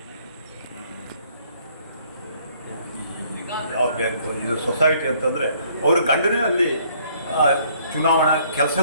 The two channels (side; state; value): both; inverted; correlation -0.63